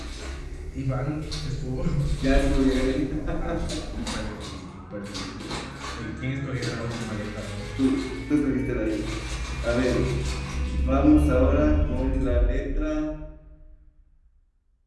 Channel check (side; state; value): both; identical; correlation 1.00